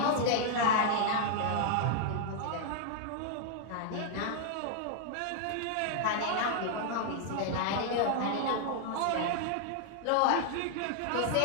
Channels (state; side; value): different; both; correlation 0.00